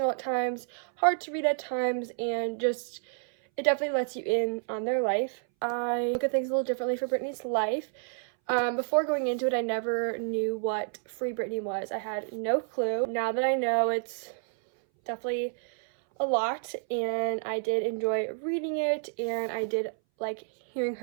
at times, hard to read at times, and just it definitely lets you in on their life. I look at things a little differently for Britney's life. Before going into it, I never knew what Free Britney was. I had no clue. Now that I know, it's definitely a lot, and I did enjoy reading it, and I did like hearing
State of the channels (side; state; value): left; silent; 58 dB below the other